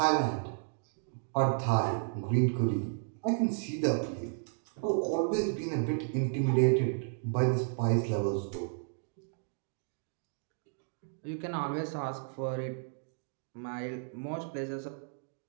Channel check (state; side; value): silent; left; digital silence